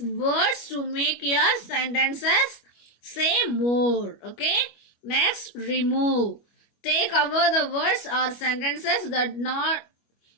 to make your sentences say more. Okay. Next, remove. Take away the words or sentences that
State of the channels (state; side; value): late; right; 25 ms